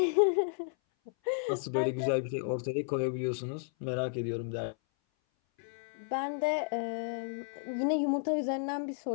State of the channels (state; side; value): silent; right; 56 dB below the other